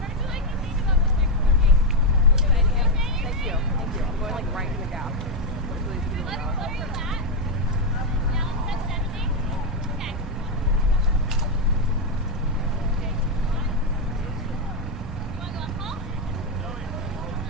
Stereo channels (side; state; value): both; normal; correlation 0.05